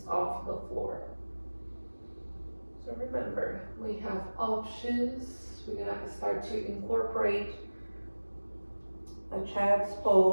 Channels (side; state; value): both; inverted; correlation -1.00